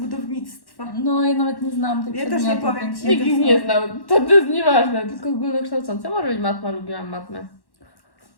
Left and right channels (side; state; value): right; late; 1.1 ms